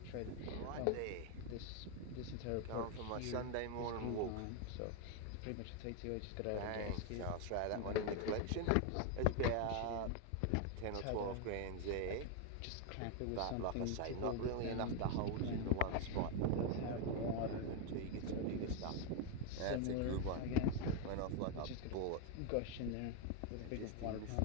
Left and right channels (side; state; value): both; different; correlation 0.01